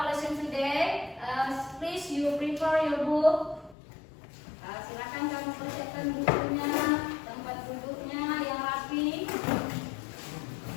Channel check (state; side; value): drops out; right; at 3.8 s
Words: lesson today, please you prepare your book. Silakan kamu persiapkan bukunya, tempat duduknya yang rapi.